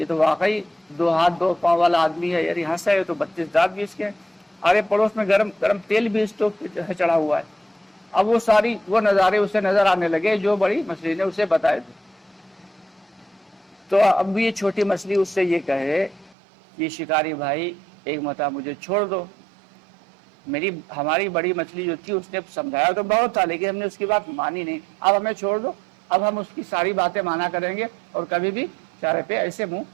تو واقعی 2 ہاتھ 2 پاؤں والا آدمی ہے، یار یہاں سے ہے تو 32 دانت بھی اس کے، ارے پڑوس میں گرم گرم تیل بھی اسٹوو پہ چڑھا ہوا ہے۔ اب وہ نظارے اسے نظر آنے لگے جو بڑی مچھلی نے اسے بتائے تھے۔ تو اب یہ چھوٹی مچھلی اس سے یہ کہے کہ شکاری بھائی ایک مرتبہ مجھے چھوڑ دو، ہماری بڑی مچھلی جو تھی اس نے سمجھایا تو بہت تھا لیکن ہم نے اس کی بات مانی نہیں، اب ہمیں چھوڑ دو، اب ہم اس کی ساری باتیں مانا کریں گے اور کبھی بھی چارے پہ ایسے منہ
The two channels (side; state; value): left; drops out; at 16.4 s